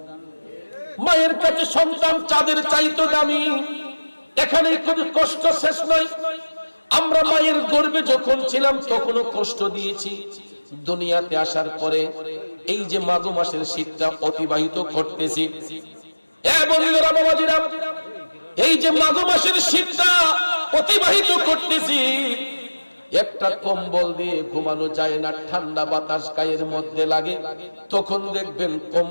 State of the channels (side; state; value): both; inverted; correlation -1.00